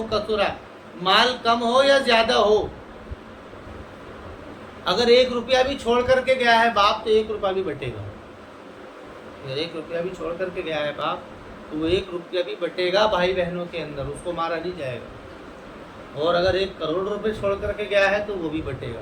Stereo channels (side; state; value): both; identical; correlation 1.00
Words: کثر، مال کم ہو یا زیادہ ہو، اگر 1 روپیہ بھی چھوڑ کر کے گیا ہے باپ تو 1 روپیہ بھی بٹے گا، اگر 1 روپیہ بھی چھوڑ کر کے گیا ہے باپ تو وہ 1 روپیہ بھی بٹے گا بھائی بہنوں کے اندر، اس کو مارا نہیں جائے گا، اور اگر 1 کروڑ روپے چھوڑ کر کے گیا ہے تو وہ بھی بٹے گا۔